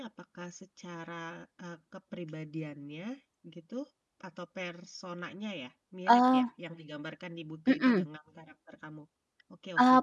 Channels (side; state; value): both; identical; correlation 1.00